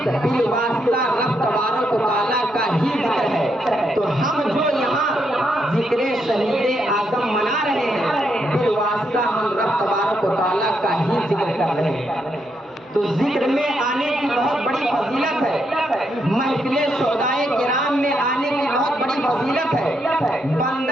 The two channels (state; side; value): normal; both; correlation 0.79